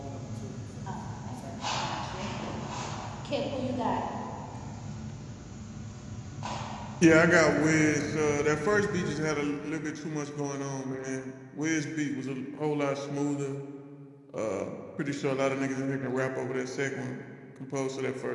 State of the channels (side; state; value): both; identical; correlation 1.00